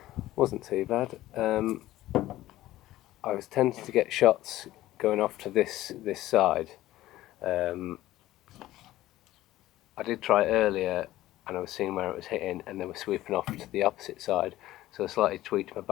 Wasn't too bad. I was tempted to get shots going off to this side. I did try earlier, and I was seeing where it was hitting, and they were sweeping off to the opposite side. So I slightly tweaked my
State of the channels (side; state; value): right; quieter; 15.5 dB